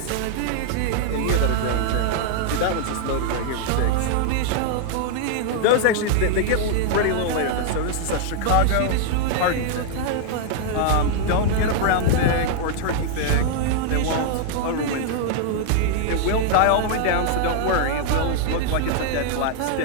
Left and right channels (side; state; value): both; different; correlation 0.00